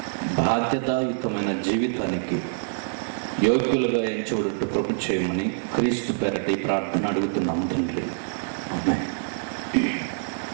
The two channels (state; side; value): silent; left; digital silence